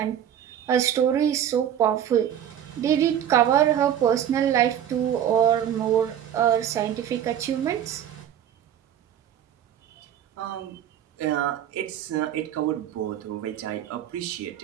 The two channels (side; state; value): left; quieter; 10.1 dB